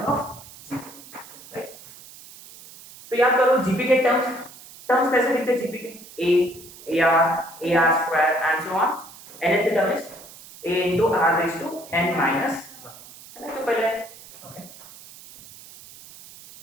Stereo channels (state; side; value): noise; right; hiss, 19 dB below the sound